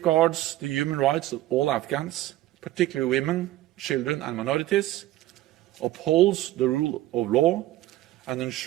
the human rights of all Afghans, particularly women, children and minorities, upholds the rule of law, and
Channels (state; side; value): quieter; left; 15.4 dB